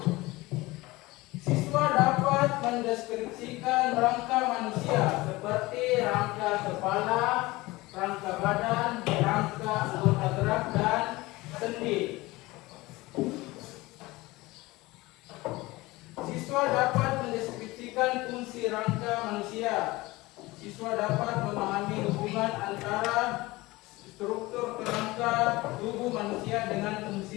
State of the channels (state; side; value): quieter; right; 20.6 dB